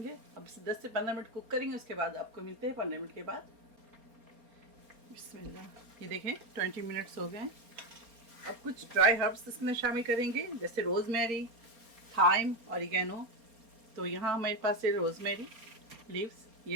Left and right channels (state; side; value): late; left; 4.3 ms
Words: अब इसे 10 से 15 मिनट कुक करेंगे, उसके बाद आपको मिलते हैं 15 मिनट के बाद। बिस्मिल्लाह, ये देखें 20 मिनट्स हो गए हैं। अब कुछ ड्राई हर्ब्स इसमें शामिल करेंगे, जैसे रोज़मेरी, थाइम, ऑरिगेनो। तो यहाँ हमारे पास है रोज़मेरी लीव्स,